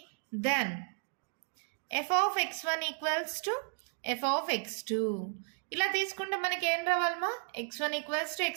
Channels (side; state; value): left; silent; 55 dB below the other